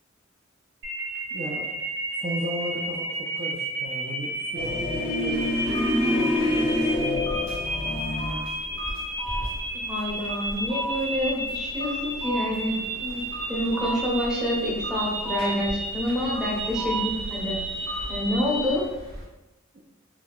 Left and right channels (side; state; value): both; normal; correlation 0.44